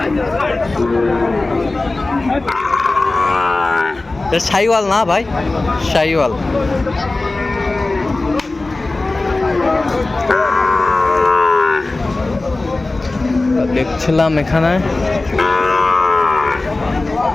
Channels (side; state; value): right; quieter; 3.1 dB